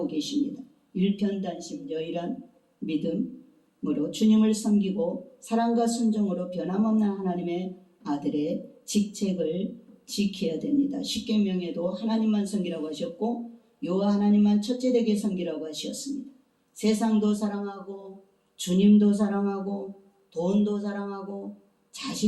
계십니다. 일편단심 여일한 믿음으로 주님을 섬기고 사랑과 순종으로 변함없는 하나님의 아들의 직책을 지켜야 됩니다. 십계명에도 하나님만 섬기라고 하셨고 여호와 하나님만 첫째되게 섬기라고 하셨습니다. 세상도 사랑하고 주님도 사랑하고 돈도 사랑하고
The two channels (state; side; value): identical; both; correlation 1.00